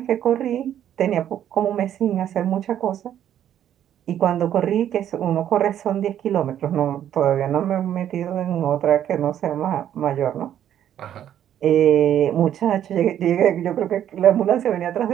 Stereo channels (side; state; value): left; quieter; 10.6 dB